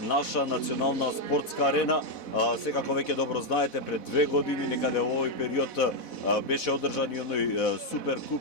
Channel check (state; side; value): late; right; 4.1 ms